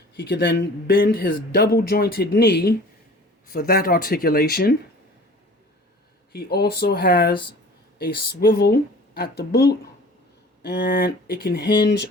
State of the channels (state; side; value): normal; both; correlation 0.45